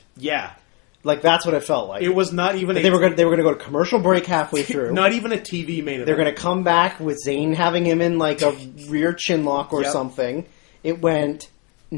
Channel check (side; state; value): right; quieter; 32.4 dB